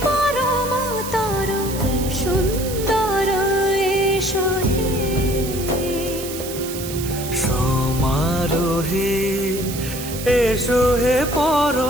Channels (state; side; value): noise; right; hiss, 10 dB below the sound